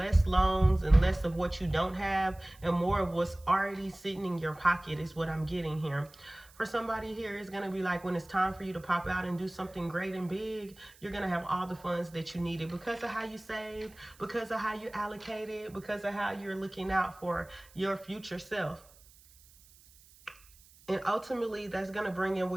loans and less of what you don't have and more of what's already sitting in your pocket is what I'm getting here. For somebody here, it's going to be like when it's time for you to pop out and do something great and big, you're going to have all the funds that you needed because of how you saved, because of how you allocated, because of how you're looking out for your future self. And ultimately, that's going to bring in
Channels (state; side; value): noise; right; hiss, 25 dB below the sound